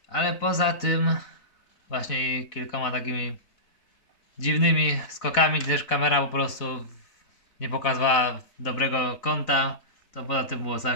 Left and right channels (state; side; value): late; right; 4.0 ms